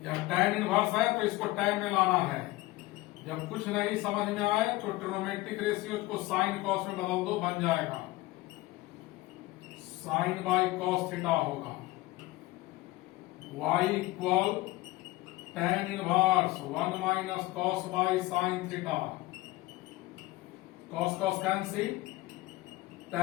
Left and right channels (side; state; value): right; quieter; 19.0 dB